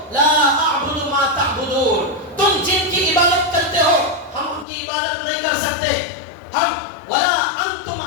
لا اعبد ما تعبدون, تم جن کی عبادت کرتے ہو ہم ان کی عبادت نہیں کر سکتے. ہم ولا انتم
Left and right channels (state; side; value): drops out; right; at 4.7 s